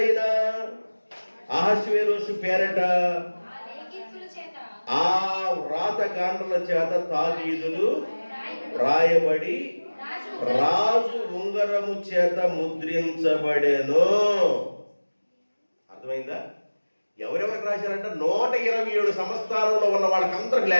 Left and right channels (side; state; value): both; inverted; correlation -1.00